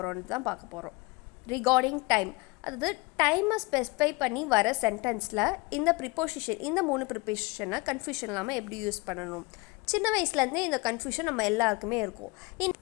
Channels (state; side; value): quieter; right; 25.3 dB